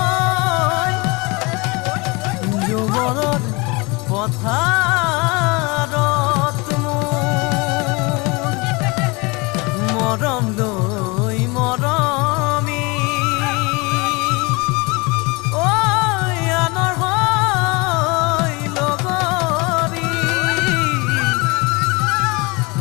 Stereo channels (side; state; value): right; quieter; 26.8 dB